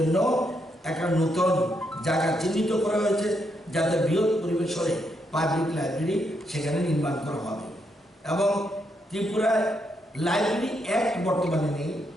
একটা নতুন জায়গা চিহ্নিত করা হয়েছে যাতে বৃহৎ পরিবেশনে পাবলিক লাইব্রেরি সেখানে নির্মাণ করা হবে। এবং ত্রিপুরায় লাইব্রেরি অ্যাক্ট বর্তমানে নেই,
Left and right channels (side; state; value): both; normal; correlation 0.78